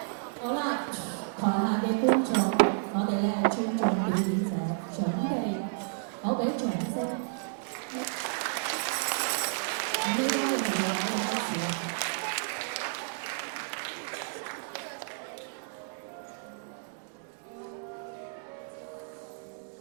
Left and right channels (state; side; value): silent; left; digital silence